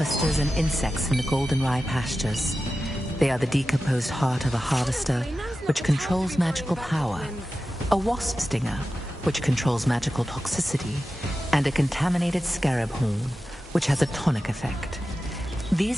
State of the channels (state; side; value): normal; both; correlation 0.93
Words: and insects in the Goldenrye Pastures. They are the decomposed heart of a harvester, which controls magical power, a wasp stinger, which controls magical toxicity, and a contaminated scarab horn, which has a tonic effect.